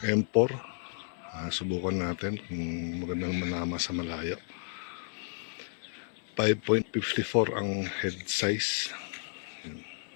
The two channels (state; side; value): silent; right; digital silence